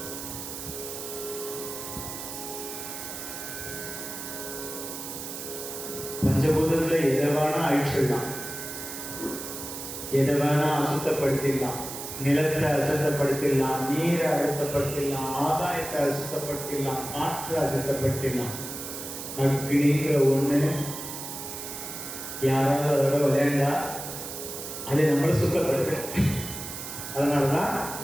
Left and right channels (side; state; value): right; noise; hiss, 8 dB below the sound